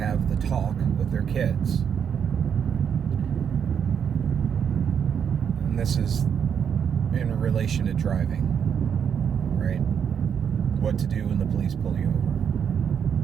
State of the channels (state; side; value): quieter; left; 7.7 dB